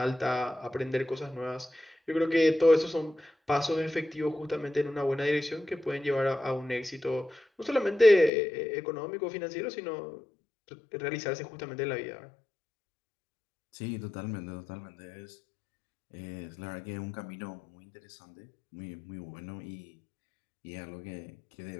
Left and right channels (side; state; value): right; drops out; at 8.3 s